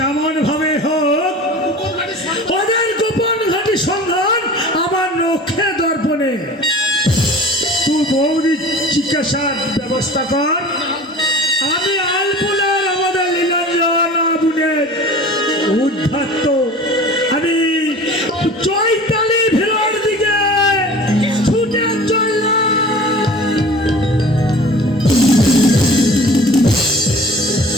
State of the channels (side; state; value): both; normal; correlation 0.41